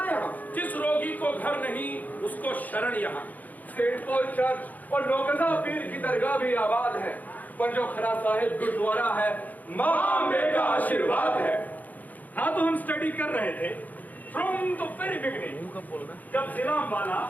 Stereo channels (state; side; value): late; right; 0.080 ms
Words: यहाँ। जिस रोगी को घर नहीं उसको शरण यहाँ। सेंट पॉल चर्च और नौकदा पीर की दरगाह भी आबाद है। पंजोखरा साहिब गुरुद्वारा है, माँ अम्बे का आशीर्वाद है। हाँ, तो हम स्टडी कर रहे थे फ्रॉम द वेरी बिगिनिंग, जब जिला अंबाला